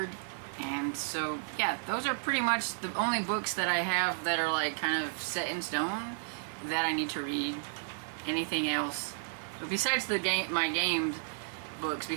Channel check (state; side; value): silent; left; 56 dB below the other